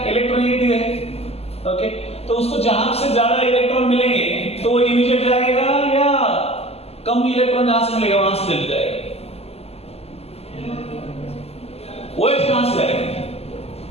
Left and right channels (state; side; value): late; right; 0.29 ms